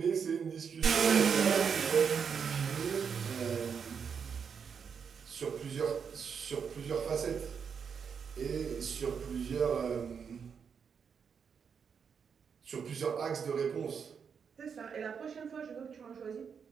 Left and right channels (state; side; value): quieter; left; 6.7 dB